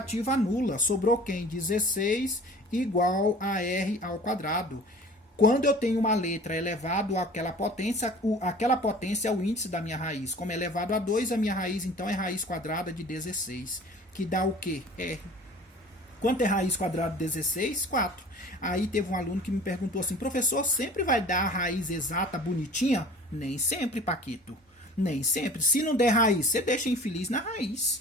anula. Sobrou quem? 16 igual a r ao quadrado. Quando eu tenho uma letra elevado àquela potência é o índice da minha raiz. Como é elevado a 2, a minha raiz então é raiz quadrada de 16. Que dá o quê? R. Quanto é raiz quadrada de 16? 4. Aí teve um aluno que me perguntou assim, professor, sempre vai dar a raiz exata bonitinha? Nem sempre, Paquito. Nem sempre. Se não der raiz, você deixa infeliz na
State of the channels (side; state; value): both; normal; correlation 0.44